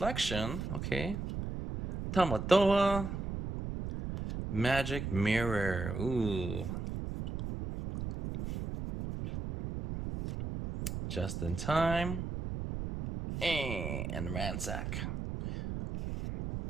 okay, Tamatoa, Magic Mirror, ooh, Just in Time, and Ransack.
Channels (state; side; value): noise; right; rumble, 5 dB below the sound